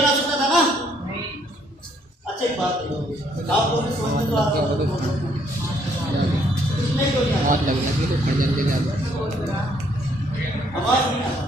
सकता था ना? अच्छा, एक बात है, आप लोग समझ में तो आता है, नहीं कोई बहुत लग लगी तो खड़ जल्दी आवाज नहीं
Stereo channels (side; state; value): both; normal; correlation 0.67